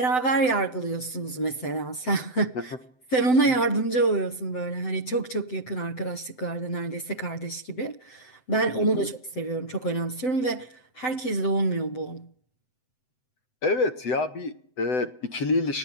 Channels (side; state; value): right; late; 7.9 ms